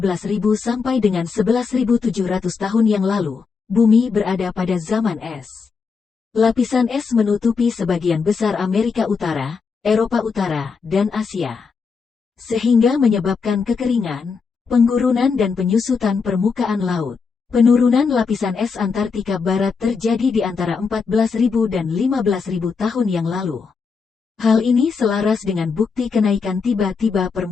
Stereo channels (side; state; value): right; quieter; 5.2 dB